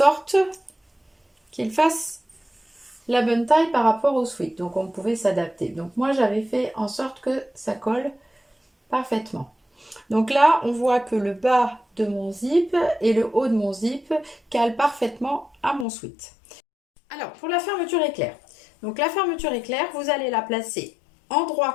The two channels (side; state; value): right; drops out; at 15.9 s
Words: qu'il fasse la bonne taille par rapport au sweat, donc on pouvait s'adapter. Donc moi j'avais fait en sorte que ça colle parfaitement. Donc là on voit que le bas de mon zip et le haut de mon zip calent parfaitement à mon sweat. Alors pour la fermeture éclair, donc la fermeture éclair, vous allez la placer endroit